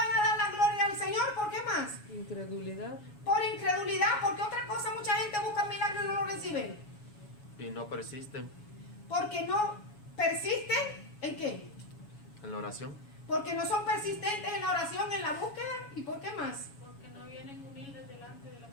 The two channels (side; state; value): right; late; 7.1 ms